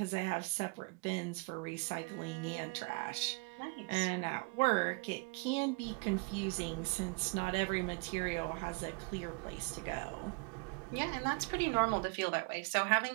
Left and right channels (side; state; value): left; quieter; 30.5 dB